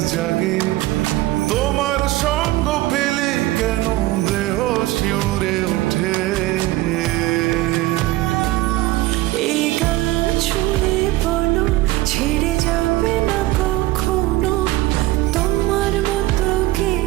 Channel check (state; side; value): quieter; left; 17.6 dB